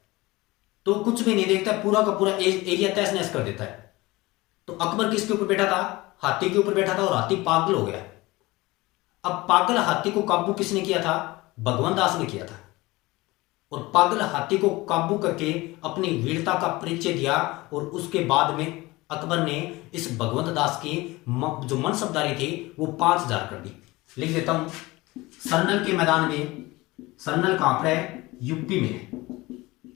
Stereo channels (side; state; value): right; quieter; 21.0 dB